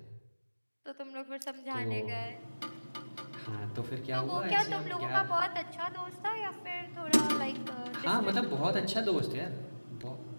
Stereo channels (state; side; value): inverted; both; correlation -1.00